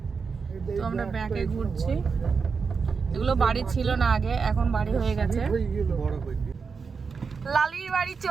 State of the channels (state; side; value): quieter; left; 5.3 dB